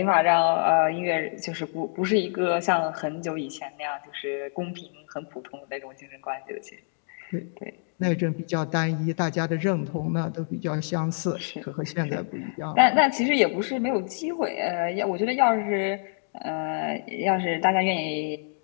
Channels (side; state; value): right; silent; 61 dB below the other